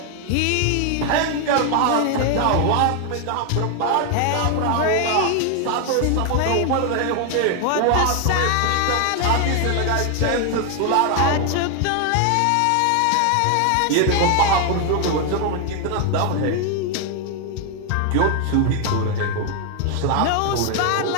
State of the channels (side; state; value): both; different; correlation 0.00